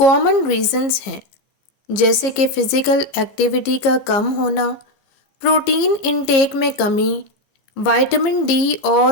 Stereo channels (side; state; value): right; late; 14 ms